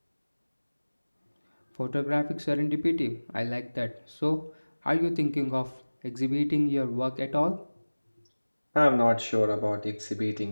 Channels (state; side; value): inverted; both; correlation -1.00